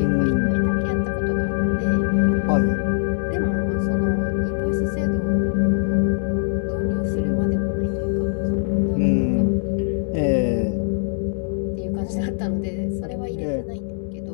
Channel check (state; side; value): silent; right; digital silence